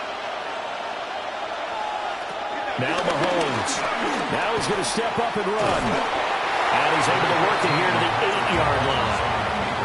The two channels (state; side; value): identical; both; correlation 1.00